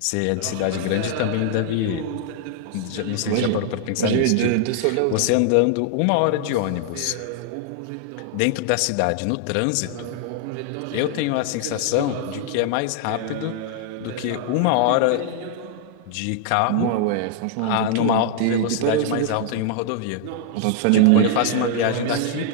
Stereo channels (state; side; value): different; both; correlation 0.00